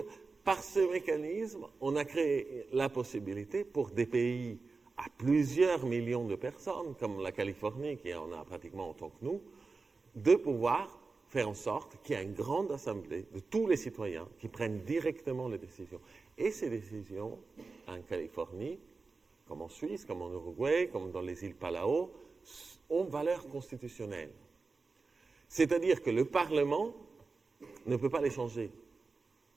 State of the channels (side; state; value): left; quieter; 4.1 dB